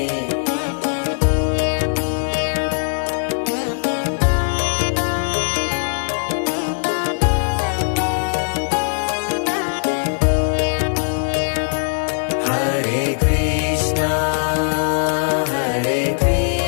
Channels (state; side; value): silent; right; digital silence